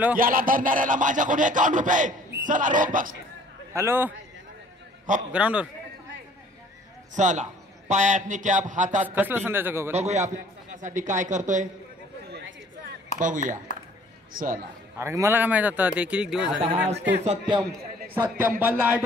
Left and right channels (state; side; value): normal; both; correlation 0.55